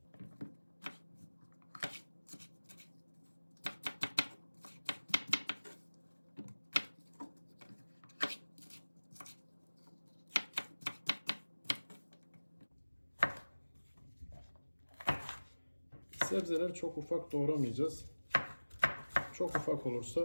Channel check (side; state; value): both; inverted; correlation -1.00